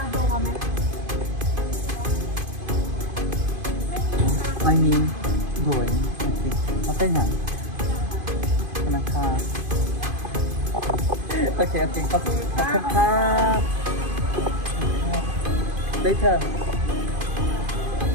I mean, going. Okay na. Okay. Later,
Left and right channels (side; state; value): left; late; 2.5 ms